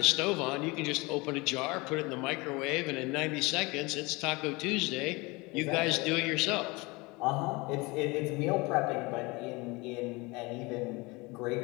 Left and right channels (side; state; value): right; quieter; 24.7 dB